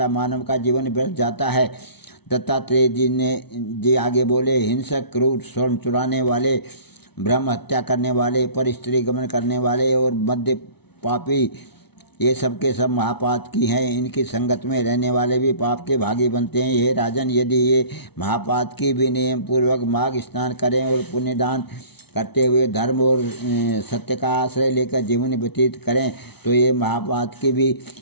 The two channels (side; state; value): right; late; 0.99 ms